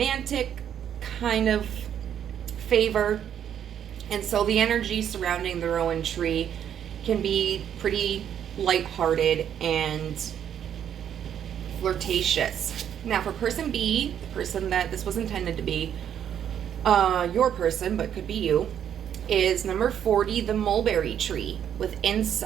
kind of favor. And so the energy surrounding the rowan tree can be pretty lighthearted and flirtatious. Now for person B, the person that this was intended to be, your person, but could be you, is number 40, the mulberry tree with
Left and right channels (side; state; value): left; quieter; 9.3 dB